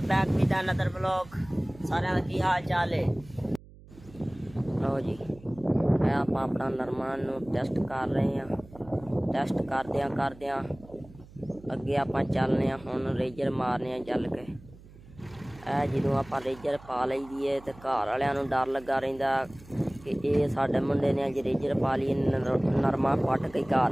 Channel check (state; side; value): noise; right; hum, 21 dB below the sound